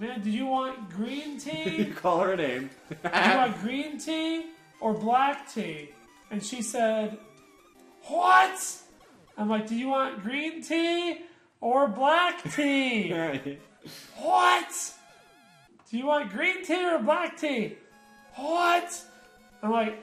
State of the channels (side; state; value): both; identical; correlation 1.00